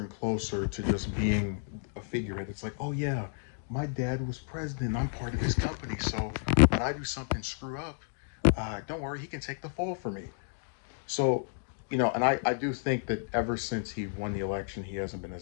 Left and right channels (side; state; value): right; silent; digital silence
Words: closer to just being a figurehead. It's like, oh yeah, my dad was president. I'm part of his company, so when I do something screw up, don't worry, he can take the fall for me. So, and I do think that ever since he won the election, he hasn't been